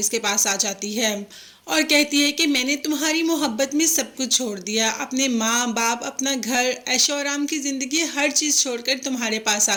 के पास आ जाती है और कहती है कि मैंने तुम्हारी मोहब्बत में सब कुछ छोड़ दिया, अपने माँ बाप, अपना घर, ऐशो आराम की ज़िंदगी, हर चीज़ छोड़कर तुम्हारे पास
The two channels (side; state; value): both; identical; correlation 1.00